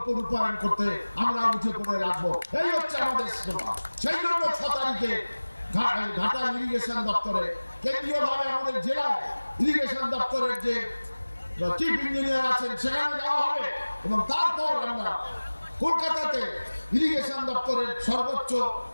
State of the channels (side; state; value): both; inverted; correlation -1.00